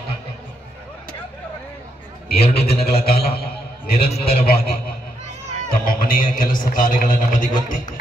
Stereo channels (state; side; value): normal; both; correlation 0.78